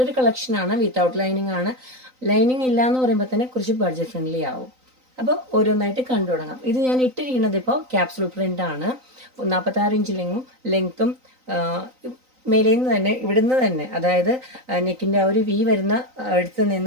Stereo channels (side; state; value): left; late; 3.9 ms